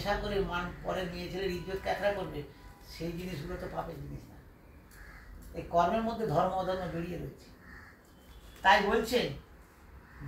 করে পরের মেয়ে ছেলের ইজ্জত ক্যাথরা করবে, সেই জিনিসগুলো তো পাপের জিনিস না। এই কর্মের মধ্যে ধর্ম অধর্ম জড়িয়ে রয়েছে। তাই বলছেন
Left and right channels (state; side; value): identical; both; correlation 1.00